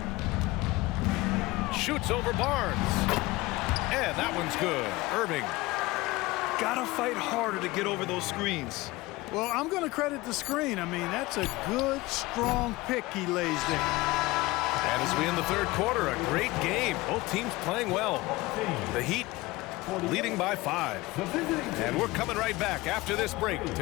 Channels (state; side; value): quieter; right; 20.7 dB